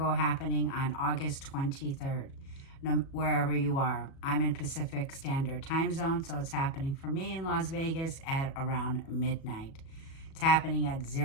happening on August 23rd, wherever you are. I'm in Pacific Standard Time Zone, so it's happening for me in Las Vegas at around midnight. It's happening at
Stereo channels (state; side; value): late; right; 37 ms